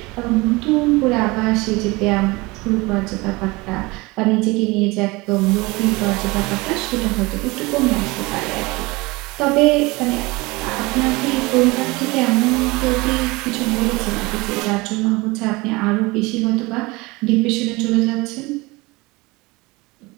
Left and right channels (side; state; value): left; quieter; 23.4 dB